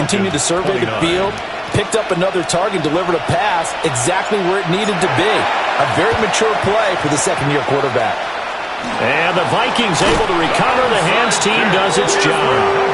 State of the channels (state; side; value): identical; both; correlation 1.00